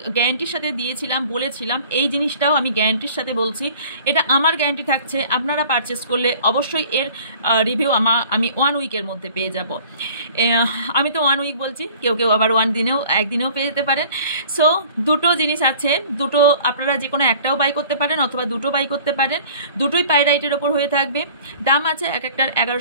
গ্যারান্টির সাথে দিয়েছিলাম, বলেছিলাম, এই জিনিসটাও আমি গ্যারান্টির সাথে বলছি। এটা আমার গ্যারান্টি থাকছে, আপনারা পারচেস করলে অবশ্যই এর রিভিউ আমি 1 উইকের মধ্যে পেয়ে যাব। আমি তো 1 উইক বলছি, কেউ কেউ আবার 1 দিনেও পেয়ে যেতে পারেন। সো দুটো জিনিস আছে, দুটো আপনারা যে কোনো একটাও বাই করতে পারেন, অথবা দুটো বাই করতে পারেন, দুটোই পাইরাইটের ওপর হয়ে থাকবে। দাম আছে এক একটার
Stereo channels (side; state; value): both; inverted; correlation -0.49